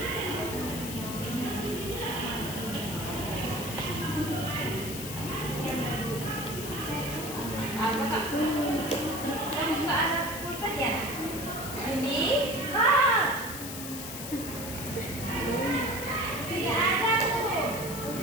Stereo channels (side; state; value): left; noise; hiss, 8 dB below the sound